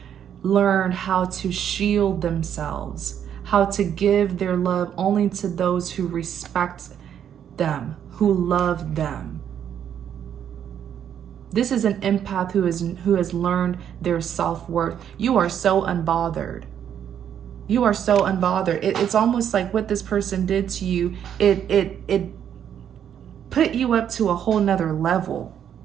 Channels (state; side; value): quieter; left; 9.2 dB